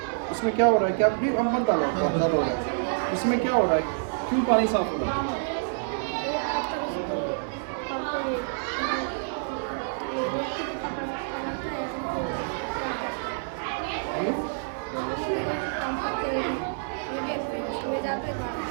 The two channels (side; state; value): left; silent; digital silence